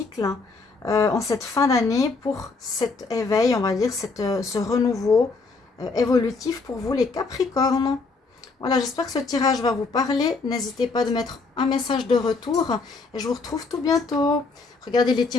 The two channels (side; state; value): right; quieter; 4.1 dB